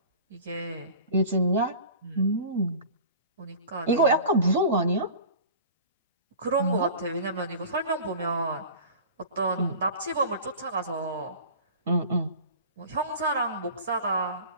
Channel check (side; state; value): both; inverted; correlation -0.38